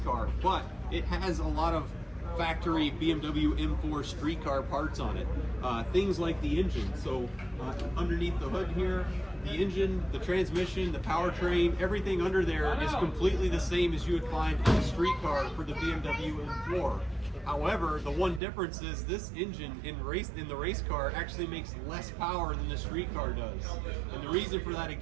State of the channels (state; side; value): drops out; left; at 18.4 s